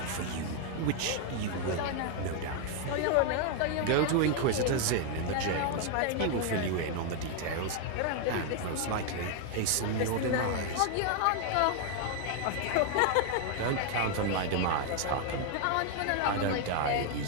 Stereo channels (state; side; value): different; both; correlation 0.01